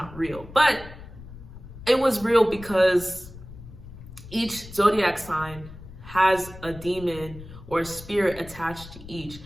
real. But it was real because each zodiac sign has a demon or a spirit attached to each.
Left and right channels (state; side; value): noise; left; rumble, 16 dB below the sound